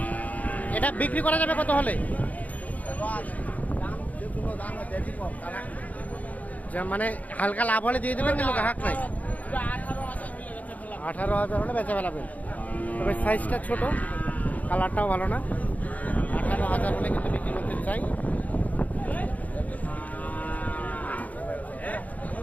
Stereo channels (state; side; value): late; right; 0.075 ms